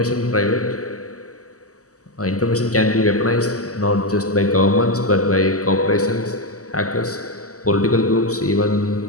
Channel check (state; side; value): late; right; 0.66 ms